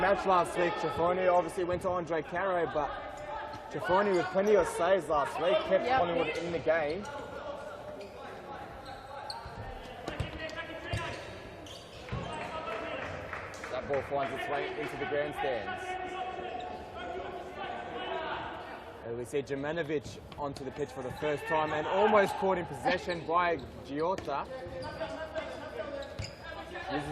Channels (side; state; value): both; identical; correlation 1.00